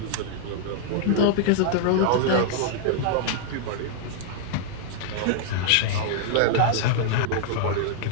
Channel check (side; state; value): both; different; correlation -0.01